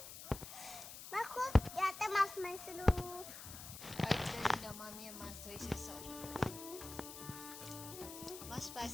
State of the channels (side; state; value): left; noise; hiss, 12 dB below the sound